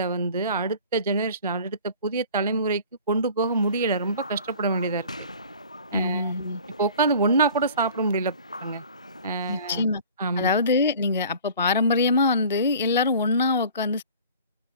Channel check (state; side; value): inverted; both; correlation -0.45